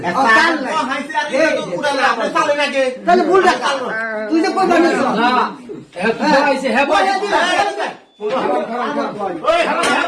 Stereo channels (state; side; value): identical; both; correlation 1.00